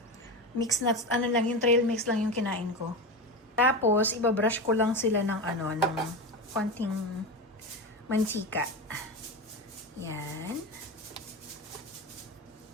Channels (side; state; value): both; normal; correlation 0.21